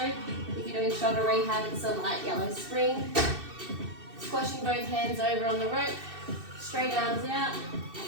If you're doing shoulder rehab, it's a light yellow spring. Squashing both hands over on the rope, straight arms out,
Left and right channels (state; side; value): late; left; 2.6 ms